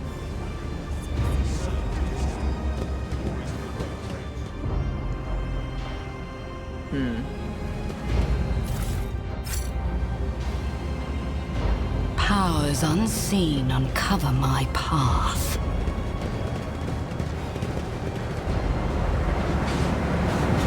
Powers unseen uncover my path.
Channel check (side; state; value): both; identical; correlation 1.00